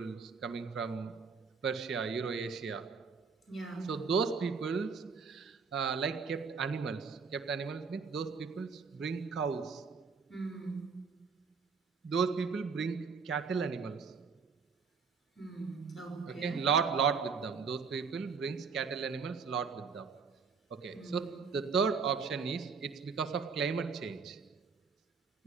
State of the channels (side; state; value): left; quieter; 5.4 dB